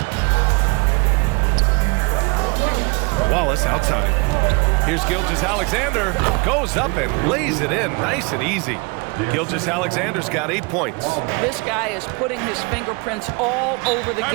Wallace outside. Here's Gilgeous-Alexander. Goes up and lays it in. Nice and easy. Gilgeous-Alexander's got 8 points. This guy is putting his fingerprints all over the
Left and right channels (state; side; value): quieter; left; 30.7 dB